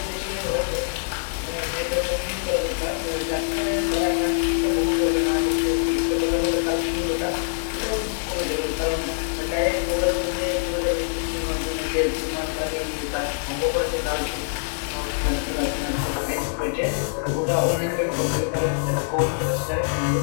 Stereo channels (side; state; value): right; silent; digital silence